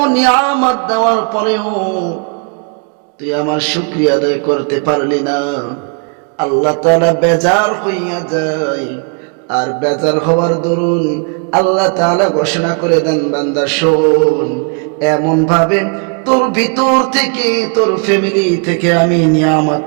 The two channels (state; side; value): quieter; left; 38.5 dB